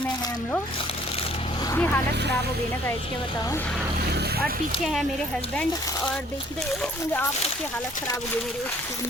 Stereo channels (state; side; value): normal; both; correlation 0.58